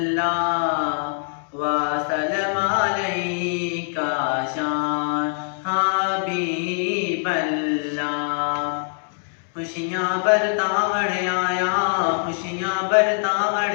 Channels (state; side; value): silent; right; digital silence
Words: व सल्लम अलैका शान हबीब अल्लाह। खुशियाँ बरतावण आया, खुशियाँ